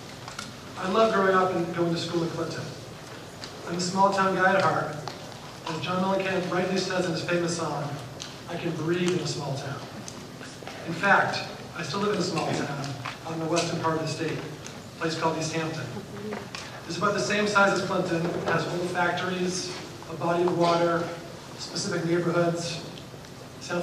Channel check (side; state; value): both; identical; correlation 1.00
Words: I love growing up and going to school in Clinton. I'm a small town guy at heart. As John Mellencamp rightly says in his famous song, I can breathe in a small town. In fact, I still live in a small town out in the western part of the state, a place called East Hampton. It's about the same size as Clinton. It has old factories, a body of water, specific neighborhoods. Sound